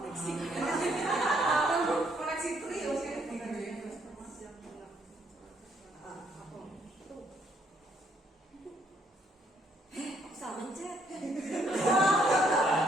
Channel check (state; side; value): normal; both; correlation 0.70